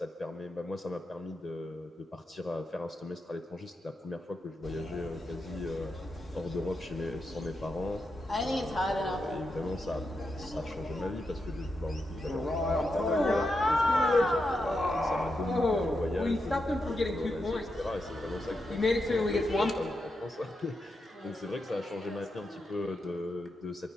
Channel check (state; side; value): normal; both; correlation 0.86